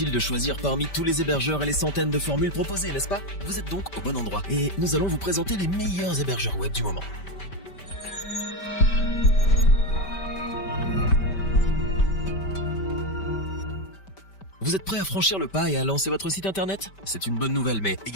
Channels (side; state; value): right; late; 5.1 ms